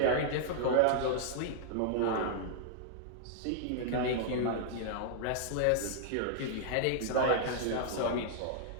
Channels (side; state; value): both; different; correlation -0.01